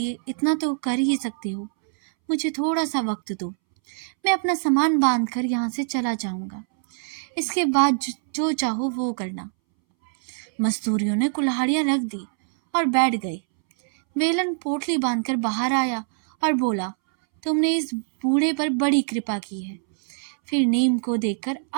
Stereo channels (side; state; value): left; silent; 63 dB below the other